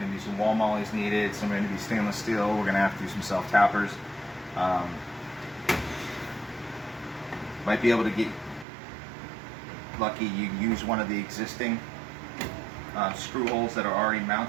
to be some wall mollies needed. Some are going to be stainless steel. We're going to have to do some self-tappers. Might be able to get lucky you use one of the existing screw holes that are already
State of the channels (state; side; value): drops out; left; at 8.7 s